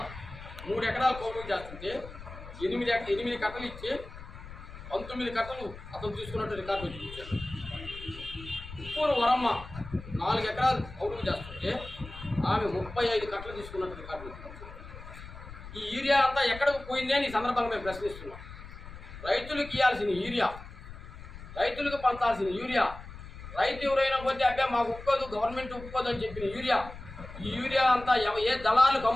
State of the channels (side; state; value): left; noise; rumble, 14 dB below the sound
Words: 3 ఎకరాలు కౌలు చేస్తుంటే 8 కట్టలు ఇచ్చి 19 కట్టలు అతను తీసుకున్నట్టు రికార్డు మీద ఇచ్చారు. ఉప్పూరు వరమ్మ 4 ఎకరాలు కౌలు చేస్తుంటే ఆమె 35 కట్టలు తీసుకున్నట్టు రికార్డు మీద ఇచ్చారు. ఈ యూరియా అంతా ఎక్కడికి పోయింది అని ఈ సందర్భంగా మేము ప్రశ్నిస్తున్నాం. రైతులకు ఇవ్వాల్సిన యూరియా, రైతులకు పంచాల్సిన యూరియా, రైతు ఎవరైనా పోతే అబ్బే మాకు ఒప్పుకోదు, గవర్నమెంట్ ఒప్పుకోదు అని చెప్పిన యూరియా, ఈ యూరియా అంతా ఏ దళాలకు